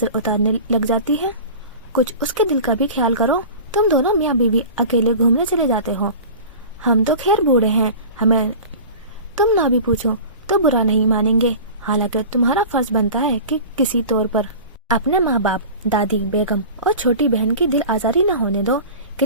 उतारने लग जाती है। कुछ उसके दिल का भी ख्याल करो। तुम दोनों मियाँ बीवी अकेले घूमने चले जाते हो। हम तो खैर बूढ़े हैं, हमें तुम ना भी पूछो तो बुरा नहीं मानेंगे। हालांकि तुम्हारा फर्ज बनता है कि किसी तौर पर अपने माँ बाप, दादी बेगम और छोटी बहन की दिल आजारी न होने दो।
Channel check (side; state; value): both; inverted; correlation -0.37